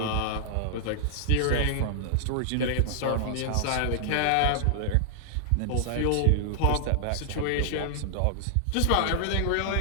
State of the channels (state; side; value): different; both; correlation -0.01